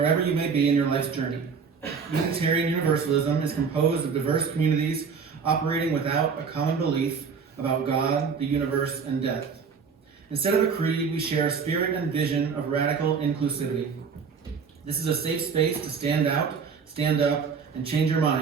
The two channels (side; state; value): left; quieter; 5.8 dB